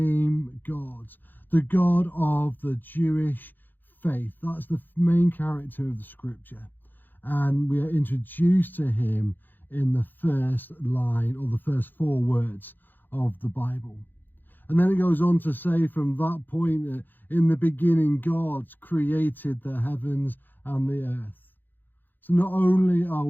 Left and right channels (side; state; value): right; late; 0.089 ms